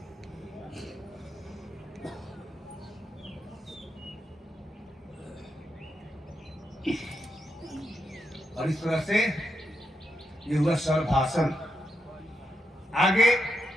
और इस तरह से ये हुआ सर्वासन। आगे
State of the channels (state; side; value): normal; both; correlation 0.83